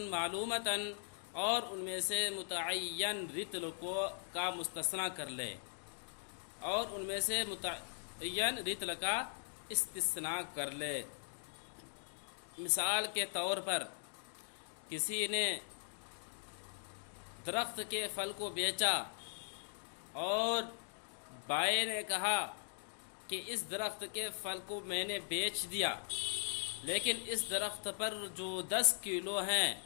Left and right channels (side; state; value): right; silent; digital silence